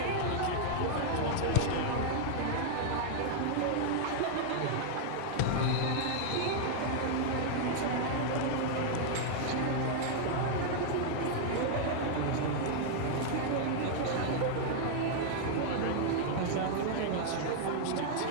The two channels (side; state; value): both; different; correlation -0.01